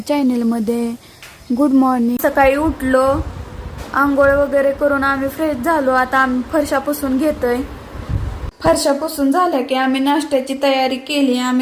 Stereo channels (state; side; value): identical; both; correlation 1.00